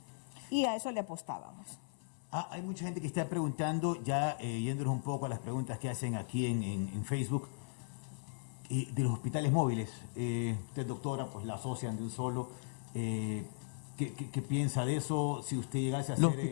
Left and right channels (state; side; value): silent; right; 53 dB below the other